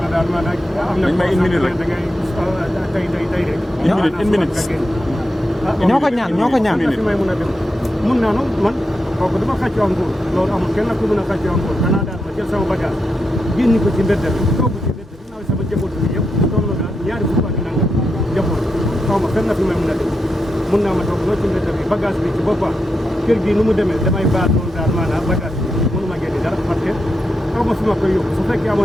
na daal ma nag am na. dañ may une minute rek da ngay tey rek. une minute. ñoo ko ñaan ñoo ko ñaan. fi may mun a dem mun naa noonu man kooku dama xàccoo am nguur loolu amul kenn ku mën a xàccoo am nguur danaa daal ma jël sama bagage génn ko ci mbedd bi toog ci mbedd bi naa sama njaboot bi yëpp toog na daal ñaari fukk ak nangam njaboot xaw ma fenn fi may mun a dem mun naa ma toog loolu ci mbedd bi bagage bi ci boppam kër gi nu mu demee damay baal noonu daal maanaam bagage bi mënu ma génne dara parce que xaw ma fi ma koy yóbbu su fekkee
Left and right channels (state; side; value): normal; both; correlation 0.86